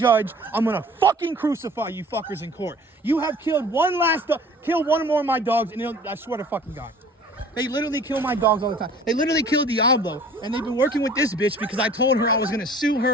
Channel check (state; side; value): normal; both; correlation 0.48